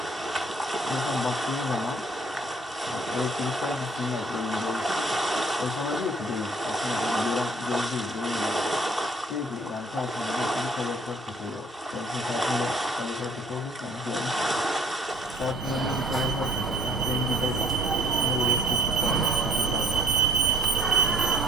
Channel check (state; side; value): normal; both; correlation 0.56